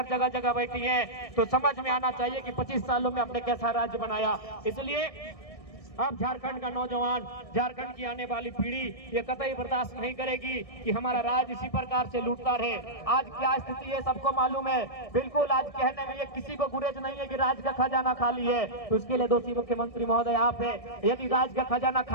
जगह जगह बैठी हैं। तो समझ में आना चाहिए कि 25 सालों में हमने कैसा राज्य बनाया। इसलिए अब झारखंड का नौजवान, झारखंड की आने वाली पीढ़ी ये कतई बर्दाश्त नहीं करेगी कि हमारा राज्य इसी प्रकार से लूटता रहे। आज क्या स्थिति है सबको मालूम है। बिल्कुल आज कहने में ये किसी को गुरेज नहीं है कि राज्य का खजाना खाली है, तो इसके लिए दोषी मुख्यमंत्री महोदय आप है। यदि राज्य का खजाना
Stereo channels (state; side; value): late; right; 1.6 ms